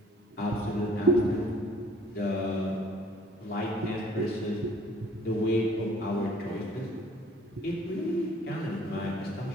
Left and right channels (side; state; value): both; normal; correlation 0.56